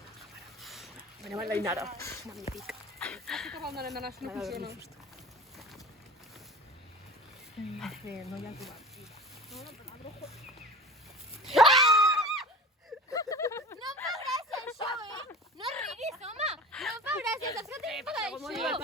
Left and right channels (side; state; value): both; normal; correlation 0.36